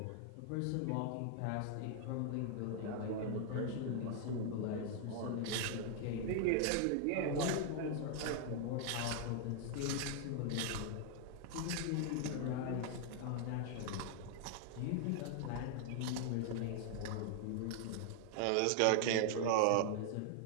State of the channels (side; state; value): both; different; correlation 0.00